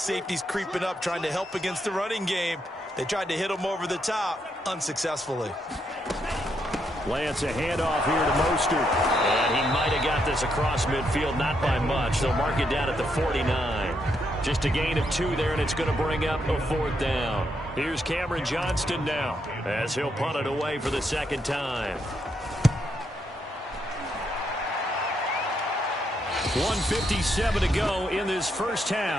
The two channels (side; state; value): both; normal; correlation 0.78